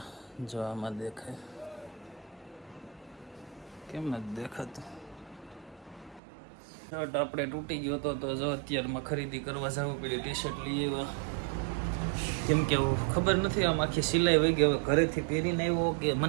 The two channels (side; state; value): left; drops out; at 6.2 s